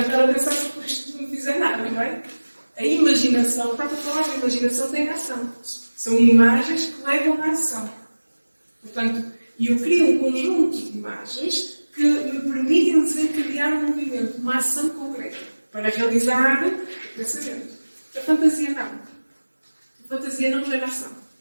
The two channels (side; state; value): both; inverted; correlation -1.00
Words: estar a pensar se isto não fizer nada, não é? A imaginação, está a falar, a imaginação tem ação. São imagens que levam à ação. Portanto, eu crio um conjunto de imagens que me permitem desencadear um movimento, uma ação concreta, para realizar o pensamento. A fantasia não. A fantasia não gera ação.